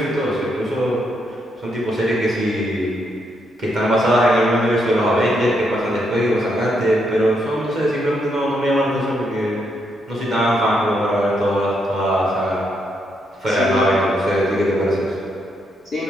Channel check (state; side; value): normal; both; correlation 0.78